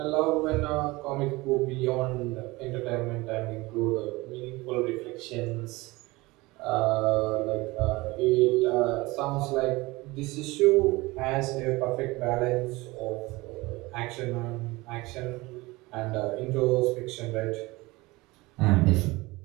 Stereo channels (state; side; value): quieter; left; 21.8 dB